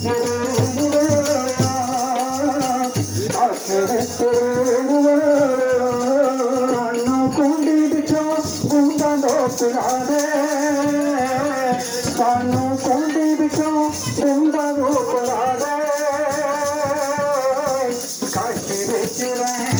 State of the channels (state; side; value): identical; both; correlation 1.00